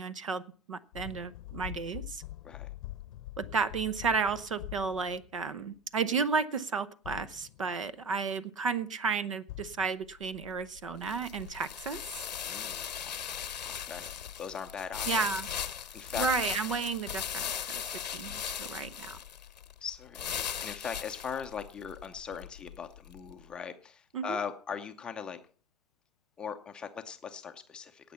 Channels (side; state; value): both; normal; correlation 0.32